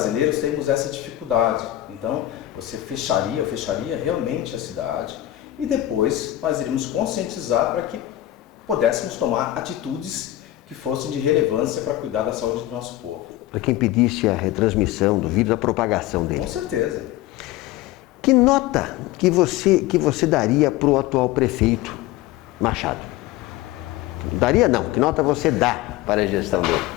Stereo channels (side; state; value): right; quieter; 14.9 dB